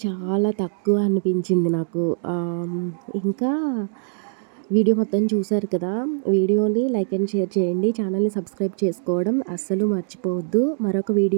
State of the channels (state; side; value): silent; left; digital silence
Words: చాలా తక్కువ అనిపించింది నాకు. ఇంకా వీడియో మొత్తం చూశారు కదా, వీడియోని లైక్ అండ్ షేర్ చేయండి, ఛానల్ని సబ్స్క్రైబ్ చేసుకోవడం అస్సలు మర్చిపోవద్దు. మరొక